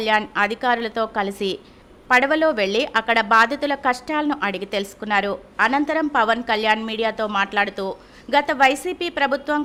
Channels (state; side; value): identical; both; correlation 1.00